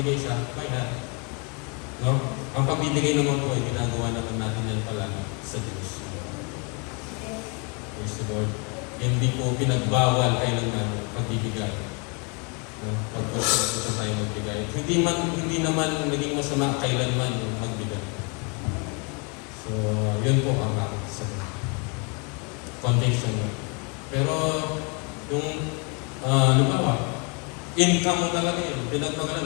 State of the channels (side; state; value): right; quieter; 34.0 dB